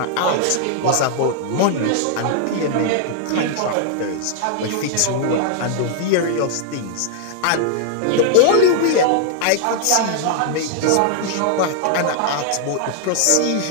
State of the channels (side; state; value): both; different; correlation -0.01